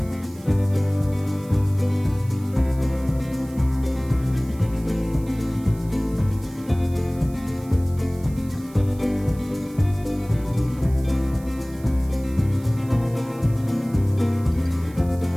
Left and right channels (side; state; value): right; noise; hiss, 23 dB below the sound